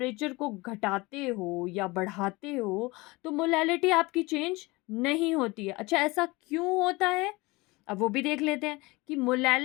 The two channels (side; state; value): right; quieter; 23.3 dB